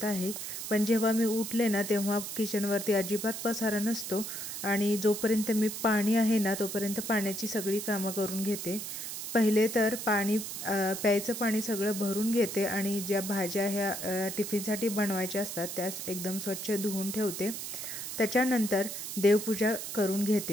आहे. पण जेव्हा मी उठले ना तेव्हा किचनवरती अजिबात पसारा नसतो आणि जोपर्यंत मी पाणी आहे ना तोपर्यंत पाण्याची सगळी कामं करून घेते. पहिले तर प्यायचं पाणी सगळं भरून घेते आणि ज्या भाज्या ह्या टिफिनसाठी बनवायच्या असतात त्यास एकदम स्वच्छ धुवून ठेवते. त्याच्यानंतर देवपूजा करून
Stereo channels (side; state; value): right; noise; hiss, 6 dB below the sound